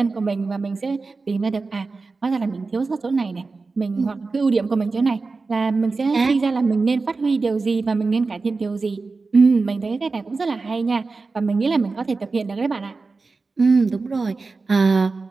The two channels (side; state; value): left; quieter; 4.0 dB